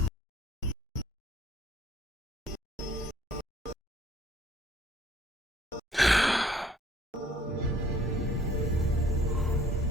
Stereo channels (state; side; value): normal; both; correlation 0.59